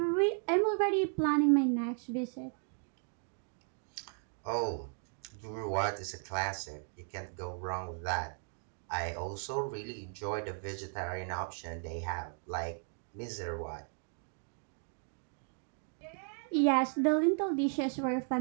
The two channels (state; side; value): silent; left; 54 dB below the other